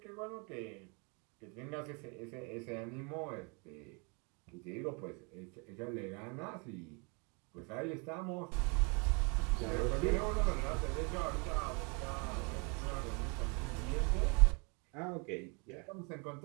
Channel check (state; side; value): quieter; left; 33.1 dB